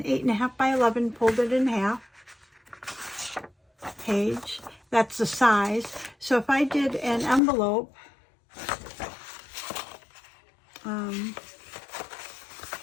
8.5 by 11 folded in half page. That's the size. So if I did an envelope,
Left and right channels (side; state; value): right; drops out; at 7.4 s